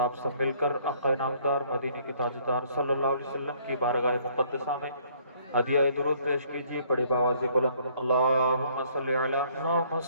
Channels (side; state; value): both; inverted; correlation -0.62